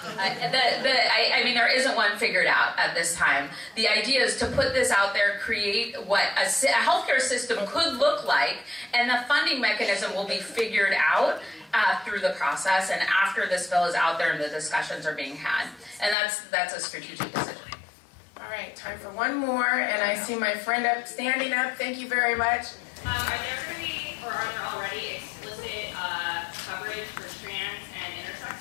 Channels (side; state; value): right; drops out; at 16.2 s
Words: There isn't one figured out at this time. The idea is to put this out there, create what a healthcare system could look like, and the funding mechanism will be figured out through the process and after this bill is out there and the discussions are being had. And that's a strategic decision. All right, time for one more, and I see my friend standing up. Thank you very much. Are there going to be, or are there already explicit coverage for trans and intersex